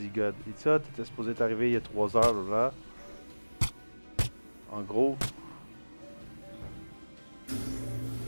God, il dit ça, t'étais supposé t'arriver il y a 3 heures, là. En gros.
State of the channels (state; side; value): inverted; both; correlation -1.00